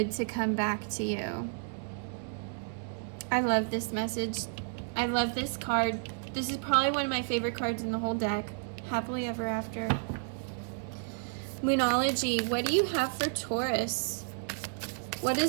to come back to you. I love this message. I love this card. This is probably one of my favorite cards in the whole deck. Happily ever after. Moonology. What do you have for Taurus? What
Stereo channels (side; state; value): left; silent; digital silence